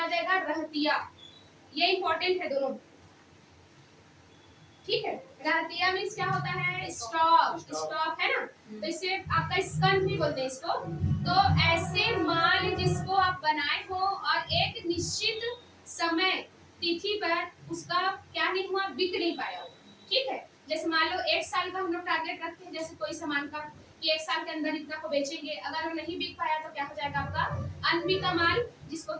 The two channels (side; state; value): both; identical; correlation 1.00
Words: जाएगा, रहतिया। ये इंपॉर्टेंट है दोनों। ठीक है, रहतिया मीन्स क्या होता है, स्टॉक, स्टॉक है ना, तो इसे आपका स्कंद भी बोलते हैं इसको। तो ऐसे माल जिसको आप बनाए हो और एक निश्चित समय तिथि पर उसका क्या नहीं हुआ, बिक नहीं पाया हो। ठीक है, जैसे मान लो 1 साल का हम लोग टारगेट रखते हैं, जैसे कोई सामान का कि 1 साल के अंदर इतना को बेचेंगे, अगर वो नहीं बिक पाया तो क्या हो जाएगा आपका अनबिका माल, जिसको